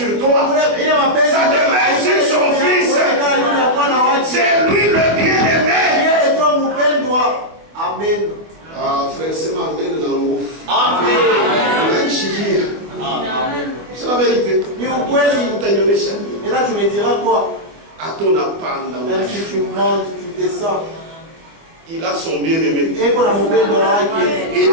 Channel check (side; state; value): left; late; 24 ms